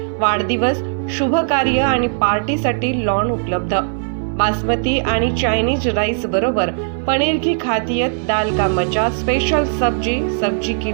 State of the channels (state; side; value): silent; left; 65 dB below the other